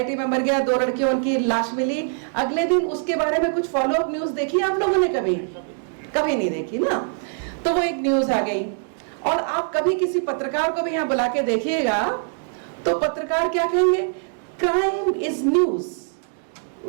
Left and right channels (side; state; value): left; silent; 63 dB below the other